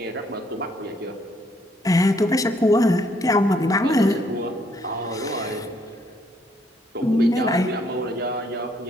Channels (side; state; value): both; normal; correlation 0.69